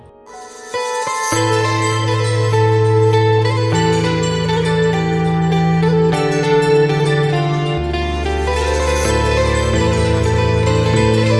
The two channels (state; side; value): identical; both; correlation 1.00